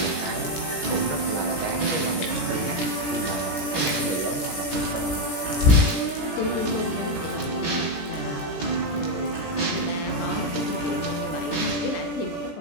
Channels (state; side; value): late; right; 17 ms